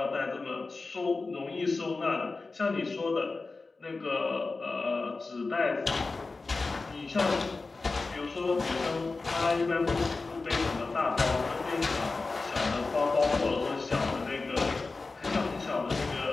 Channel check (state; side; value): quieter; right; 3.8 dB